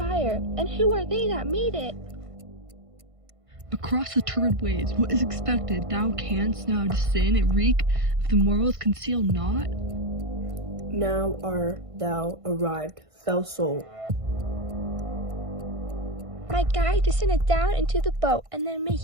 And who are they that made it? Across the turbid waves, what is expected? Thou canst now descend and reek if the morals conceal not? Now art thou arrived, fell soul. My guide descended down into the boat, and then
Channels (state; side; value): late; left; 1.5 ms